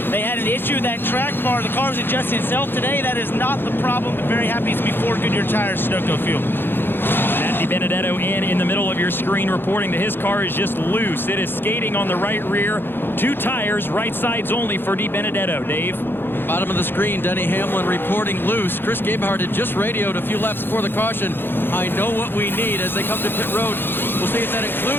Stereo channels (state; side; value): late; right; 0.10 ms